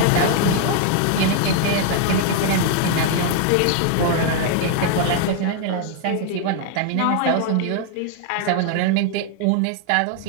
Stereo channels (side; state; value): both; different; correlation 0.00